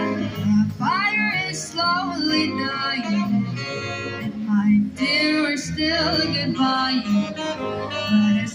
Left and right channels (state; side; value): identical; both; correlation 1.00